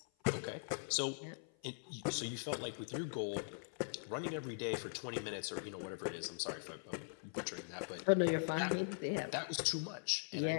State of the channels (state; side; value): silent; right; 50 dB below the other